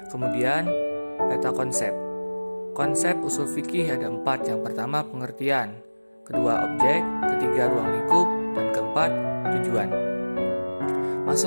Kemudian, peta konsep. Konsep usul fikih ada 4. Yang pertama pengertian, kedua objek, ketiga ruang lingkup, dan keempat tujuan.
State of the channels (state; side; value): inverted; both; correlation -1.00